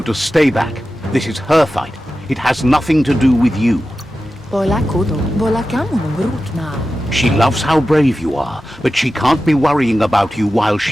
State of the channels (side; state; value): both; normal; correlation 0.93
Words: to stay back. This is her fight. It has nothing to do with you. Bola kudo. Bola kamunum rutna. She loves how brave you are, but she can't be worrying about you while